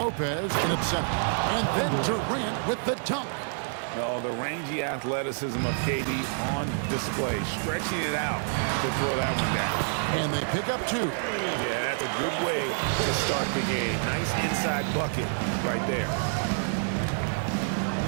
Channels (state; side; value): silent; left; digital silence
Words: in at center. And then Durant with the dunk. Oh, the rangy athleticism of KD on display, stretching it out to throw that one down. And they pick up 2. Yeah, that's a good way to start the game. Nice inside bucket right there.